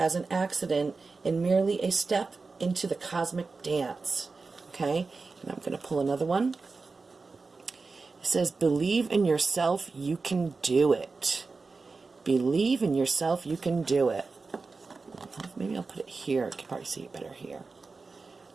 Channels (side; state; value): left; quieter; 4.1 dB